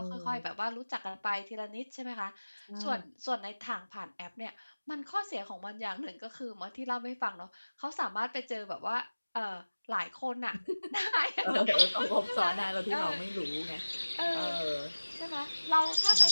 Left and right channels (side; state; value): both; inverted; correlation -1.00